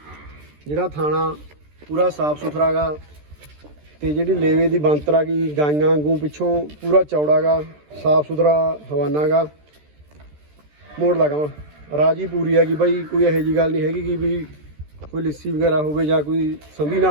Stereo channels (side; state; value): left; late; 13 ms